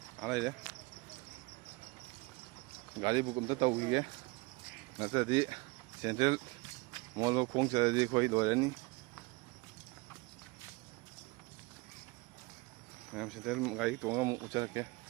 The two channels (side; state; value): left; quieter; 25.7 dB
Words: ꯂꯩꯔꯦ ꯒꯥꯔꯤ ꯕꯨꯛ ꯑꯝꯇ ꯇꯧꯈꯤꯒꯦ ꯅꯠꯇ꯭ꯔꯗꯤ ꯁꯦꯟꯇ꯭ꯔꯦꯜ ꯃꯣꯜꯗꯣ ꯈꯣꯡ ꯆꯠꯂꯗꯤ ꯑꯩꯈꯣꯏ ꯂꯣꯏꯔꯅꯤ ꯃꯌꯥꯝ ꯁꯦꯟꯇ꯭ꯔꯦꯜ ꯒꯥꯔꯤ ꯇꯣꯡꯉꯒ ꯑꯃꯨꯛ ꯎꯠꯆꯔꯛꯀꯦ